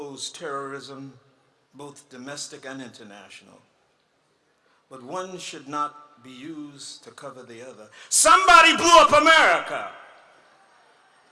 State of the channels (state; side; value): identical; both; correlation 1.00